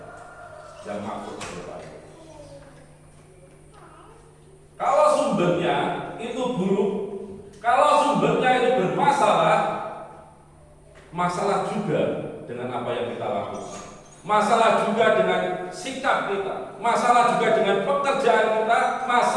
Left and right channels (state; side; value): identical; both; correlation 1.00